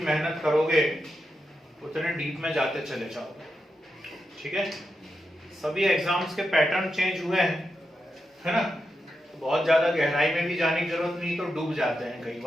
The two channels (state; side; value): normal; both; correlation 0.87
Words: मेहनत करोगे उतने डीप में जाते चले जाओगे। ठीक है, सभी एग्जाम्स के पैटर्न चेंज हुए हैं, है ना, तो बहुत ज्यादा गहराई में भी जाने की जरूरत नहीं, तो डूब जाते हैं कई